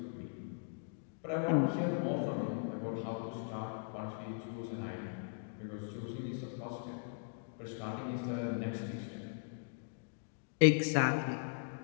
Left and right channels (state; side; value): silent; right; digital silence